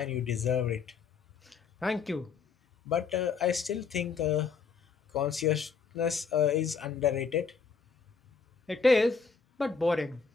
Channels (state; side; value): quieter; right; 5.5 dB